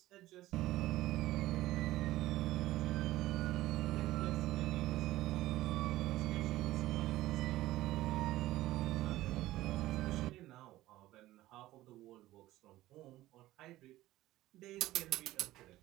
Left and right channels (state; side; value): quieter; left; 16.1 dB